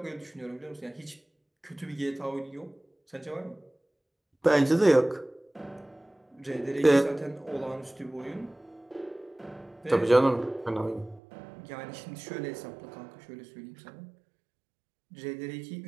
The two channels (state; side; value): drops out; left; at 11.2 s